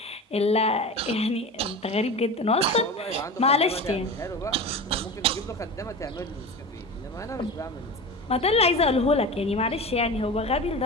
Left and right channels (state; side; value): normal; both; correlation 0.30